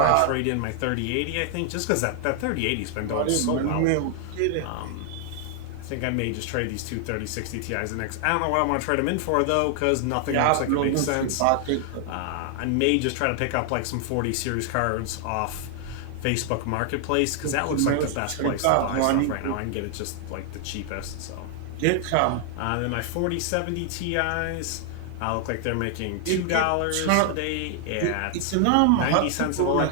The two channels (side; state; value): both; different; correlation 0.00